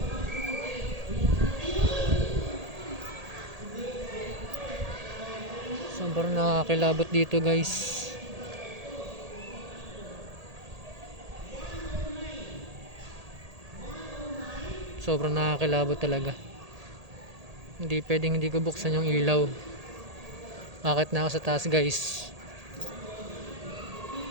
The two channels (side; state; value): left; late; 1.8 ms